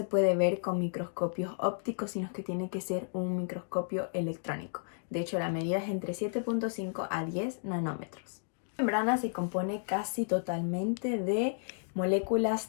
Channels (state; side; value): silent; right; digital silence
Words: puede ver con microscopios ópticos, sino que tiene que ser un microscopio electrónico. De hecho, la medida es entre 7.5 a 10 nanómetros. La membrana se compone casi totalmente de moléculas